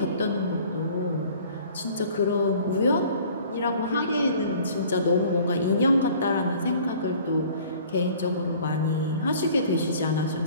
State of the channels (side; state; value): both; inverted; correlation -0.51